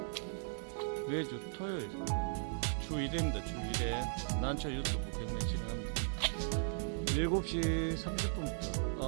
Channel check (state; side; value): silent; left; 53 dB below the other